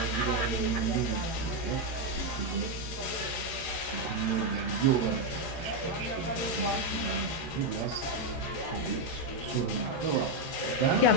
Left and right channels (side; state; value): right; late; 13 ms